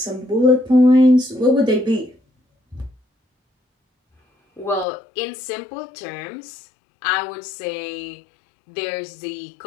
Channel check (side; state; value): right; drops out; at 4.9 s